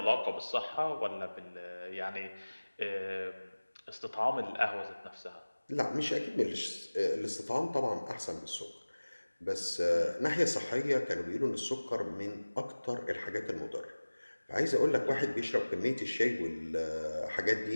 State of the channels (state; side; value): inverted; both; correlation -1.00